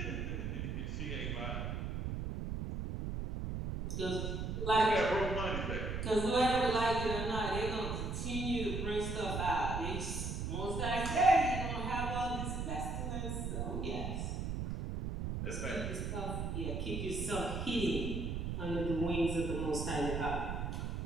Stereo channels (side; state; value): right; noise; rumble, 3 dB below the sound